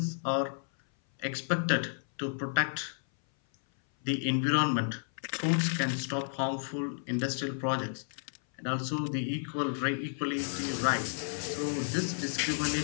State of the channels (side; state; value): right; silent; 56 dB below the other